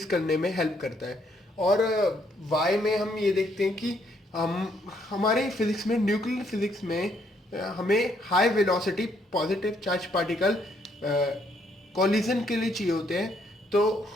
करने में हेल्प करता है। और वाई में हम ये देखते हैं कि हम हमारे फिजिक्स में, न्यूक्लियर फिजिक्स में हमें high velocity positive charge particle collision के लिए चाहिए होते हैं, तो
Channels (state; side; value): normal; both; correlation 0.70